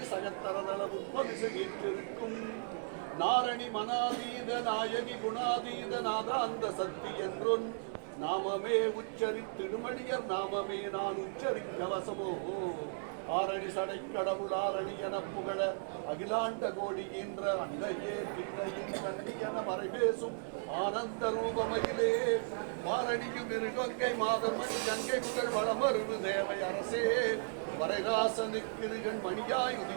சகத்தரதள உற்பவிசகிற்றிருக்கும் நாரணி மனாதீத நாயகி குணாதீத நாதாந்த சக்தி என்றொன் நாமமே உச்சரித்திடுமடியர் நாமமே நான் உச்சரிக்க வசமோ ஆரணி சடை கடவுள் ஆரணி என புகழ அகிலாண்ட கோடி என்ற அன்னையே பின்னையின் கண்ணி என மறைபேசும் ஆனந்த ரூபமகிலே மாரணியும் இருகங்கை மாதமணி கங்கை புகழ் வளமருவு தேவை அரசே வரைராசனுக்கிருகன் மணியாய்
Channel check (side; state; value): left; silent; 54 dB below the other